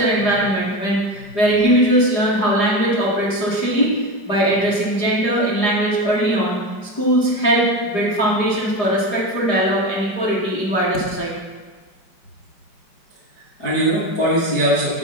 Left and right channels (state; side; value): late; right; 4.9 ms